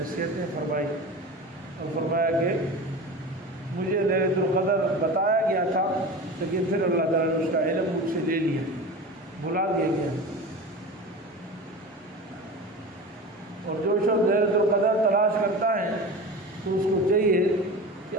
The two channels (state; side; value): normal; both; correlation 0.31